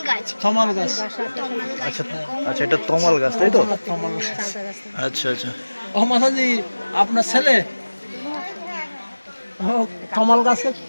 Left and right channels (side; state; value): both; inverted; correlation -1.00